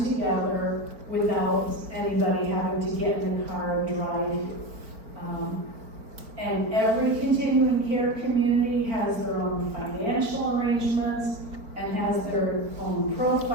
together without anybody having to get in the car and drive you. And every continuing care community has their own financial arrangements and has their own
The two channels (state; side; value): late; left; 4.5 ms